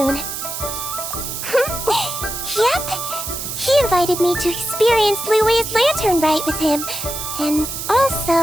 Yep. He invited me to experience Liu's lantern rite with him, and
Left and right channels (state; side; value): noise; right; hiss, 6 dB below the sound